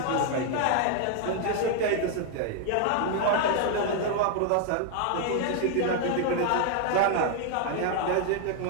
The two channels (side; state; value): both; different; correlation 0.00